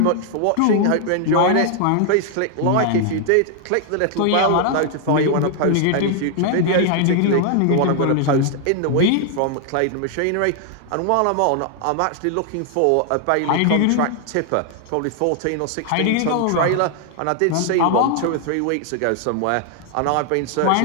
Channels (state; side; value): different; both; correlation 0.00